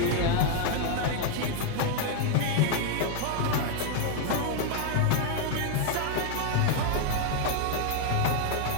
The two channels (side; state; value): both; different; correlation 0.00